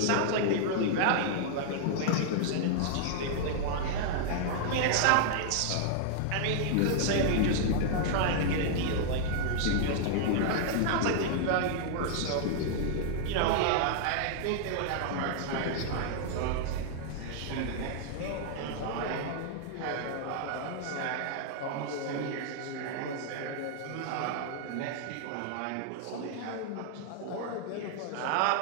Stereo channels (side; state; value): both; different; correlation -0.01